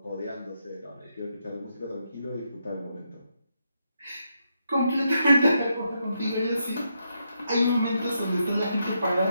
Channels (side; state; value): both; inverted; correlation -0.80